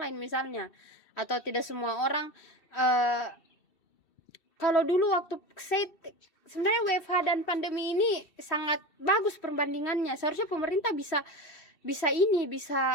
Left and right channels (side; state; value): right; late; 2.7 ms